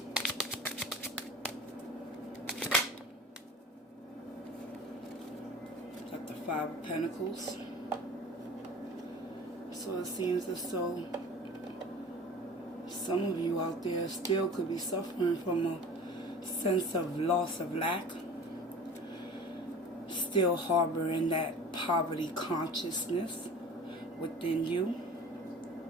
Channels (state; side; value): normal; both; correlation 0.40